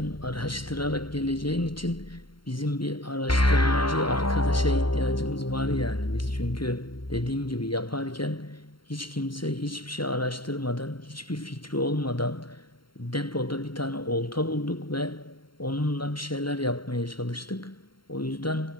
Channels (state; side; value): late; right; 0.73 ms